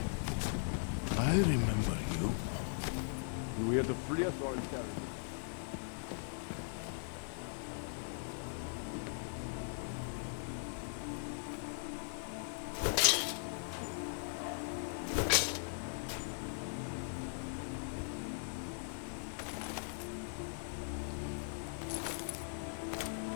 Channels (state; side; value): silent; right; digital silence